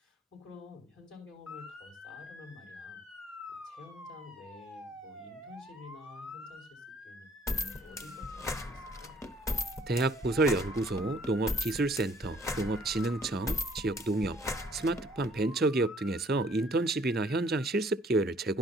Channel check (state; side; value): normal; both; correlation 0.60